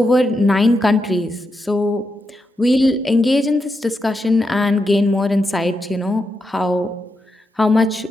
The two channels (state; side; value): normal; both; correlation 0.85